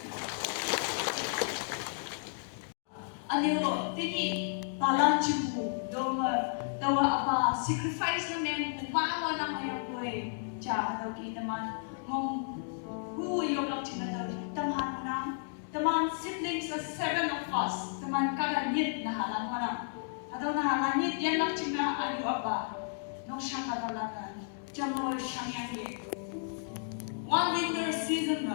Anilo tini palan chibu doma dawa apa sacrifice na men umawa na mayang boy cha daw kita man mong who yung lang china tamhan na taman siblings of 7 of us taman kaganit na halang mana ataw na halangit yan lang china ayu apa nung siya katalagan jamo siyang yangi one winter season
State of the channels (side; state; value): right; silent; digital silence